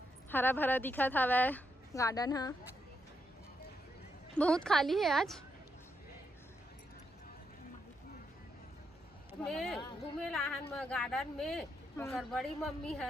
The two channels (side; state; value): both; normal; correlation 0.81